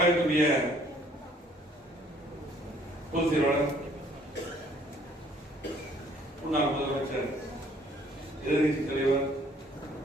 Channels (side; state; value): both; normal; correlation 0.60